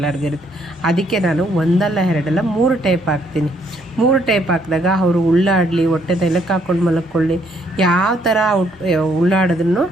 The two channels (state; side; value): normal; both; correlation 0.69